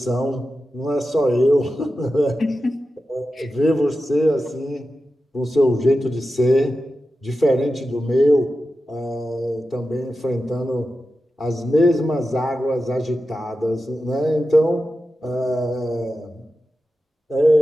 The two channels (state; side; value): normal; both; correlation 0.92